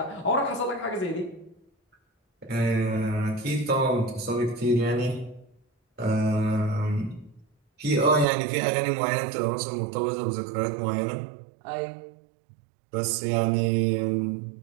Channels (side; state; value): left; drops out; at 8.2 s